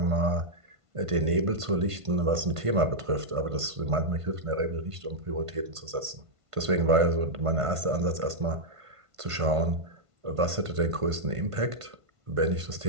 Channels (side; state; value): left; late; 1.5 ms